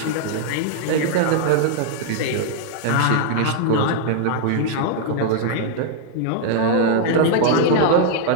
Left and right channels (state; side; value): different; both; correlation 0.00